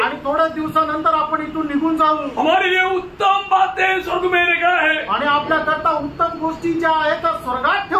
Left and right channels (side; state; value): both; identical; correlation 1.00